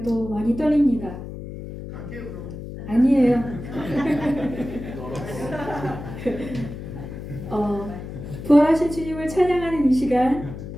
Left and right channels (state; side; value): noise; left; hum, 10 dB below the sound